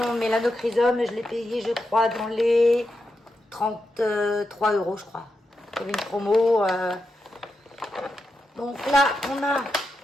Melanochrysum, je l'ai payé, je crois, dans les 33 €, je crois. Il y avait une promo. Donc là, on a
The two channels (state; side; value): normal; both; correlation 0.87